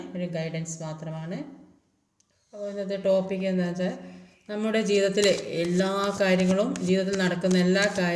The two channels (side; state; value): both; identical; correlation 1.00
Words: ഒരു ഗൈഡൻസ് മാത്രമാണ്. അപ്പോൾ ഇന്നത്തെ ടോപ്പിക് എന്താ വെച്ചാൽ, നമ്മുടെ ജീവിതത്തിലെ എല്ലാ കാര്യങ്ങളും, ജീവിതത്തിൽ നടക്കുന്ന എല്ലാ